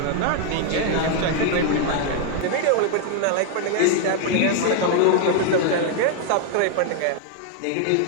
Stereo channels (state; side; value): different; both; correlation 0.00